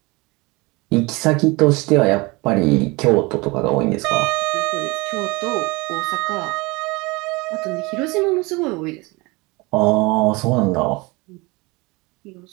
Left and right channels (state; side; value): quieter; left; 24.9 dB